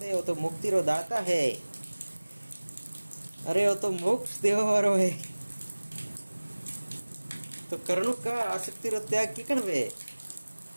है वो तो मुक्ति रो दाता है अरे वो तो मोक्ष देव वारो है तो कर्णु का आसक्ति रो त्याग किकण वे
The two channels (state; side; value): inverted; both; correlation -1.00